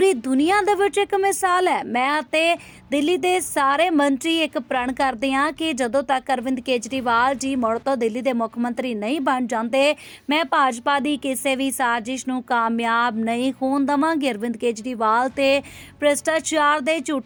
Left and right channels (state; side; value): identical; both; correlation 1.00